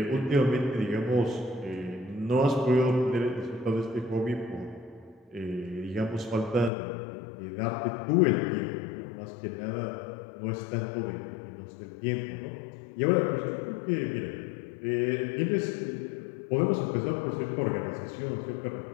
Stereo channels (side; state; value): right; drops out; at 6.7 s